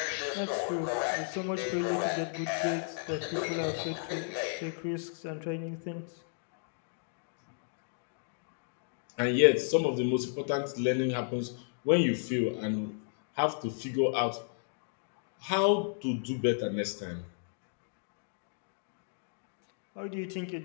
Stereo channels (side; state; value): right; silent; digital silence